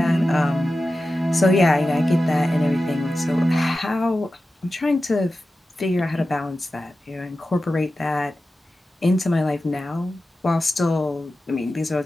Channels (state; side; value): normal; both; correlation 0.93